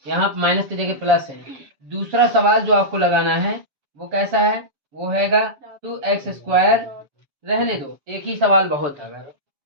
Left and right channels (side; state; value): left; late; 7.1 ms